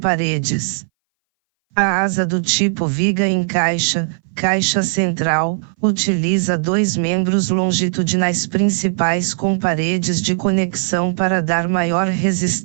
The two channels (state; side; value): silent; left; 62 dB below the other